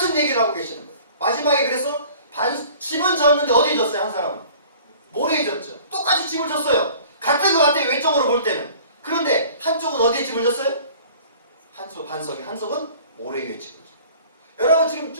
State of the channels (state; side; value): inverted; both; correlation -0.48